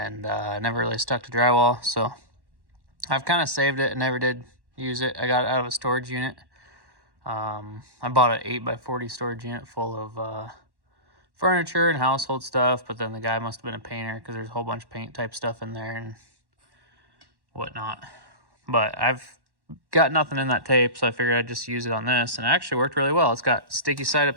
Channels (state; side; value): late; left; 1.1 ms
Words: never really stuck to drywall, so I've kind of saved it and never did use it. I got it out of a storage unit. I bought an 8x40 storage unit full of furniture and household stuff, but then the guy must have been a painter because there's a whole bunch of paint type stuff in there and whatnot. But I've got nothing in that tape, so I figured I'd just use it on this, and it actually worked really well. It's got sticky side